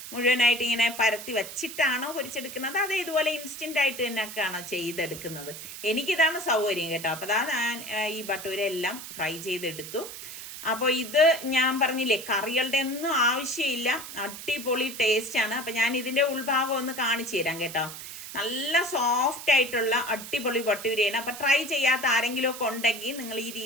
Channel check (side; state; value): right; noise; hiss, 11 dB below the sound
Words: മുഴുവനായിട്ട് ഇങ്ങനെ പരത്തി വെച്ചിട്ടാണോ പൊരിച്ചെടുക്കുന്നത്? അത് ഇതുപോലെ ഇൻസ്റ്റന്റ് ആയിട്ട് തന്നെയൊക്കെയാണോ ചെയ്തെടുക്കുന്നത്? എനിക്കിതാണ് സൗകര്യം കേട്ടോ. അപ്പൊ ഞാൻ ഈ ബട്ടൂര എല്ലാം ഫ്രൈ ചെയ്തെടുത്തു. അപ്പോൾ ഇത് ഞാൻ പറഞ്ഞില്ലേ, കറികളുടെ ഒന്നും ആവശ്യമില്ല, അടിപൊളി ടേസ്റ്റ് ആണ്. അപ്പൊ ഞാൻ ഇതിന്റെ ഉൾഭാഗം ഒന്ന് കാണിച്ചു തരാം കേട്ടോ. നല്ല സോഫ്റ്റ് ആയിട്ടുള്ള അടിപൊളി ബട്ടൂരയാണ്. അപ്പൊ ട്രൈ ചെയ്യാത്ത ആരെങ്കിലും ഒക്കെ ഉണ്ടെങ്കിൽ നിങ്ങൾ ഈ